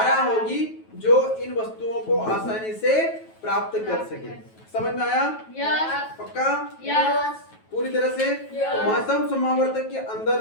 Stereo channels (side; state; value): right; late; 9.2 ms